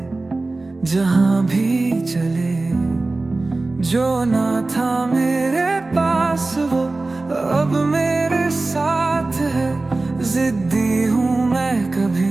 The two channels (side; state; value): left; quieter; 3.2 dB